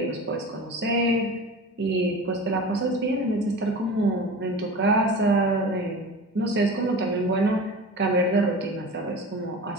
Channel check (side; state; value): both; normal; correlation 0.34